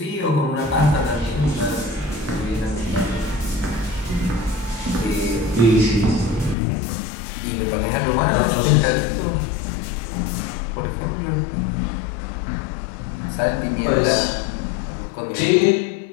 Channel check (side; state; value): right; drops out; at 6.6 s